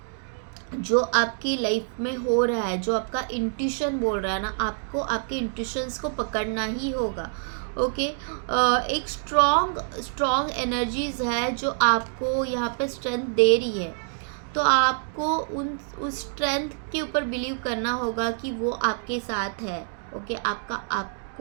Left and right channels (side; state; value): left; silent; 61 dB below the other